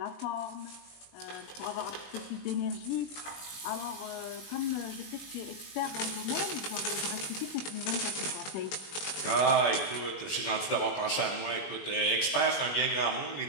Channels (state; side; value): late; right; 21 ms